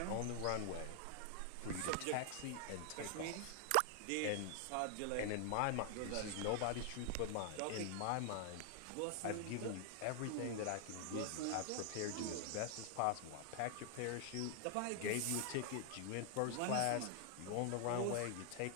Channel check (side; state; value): both; different; correlation 0.00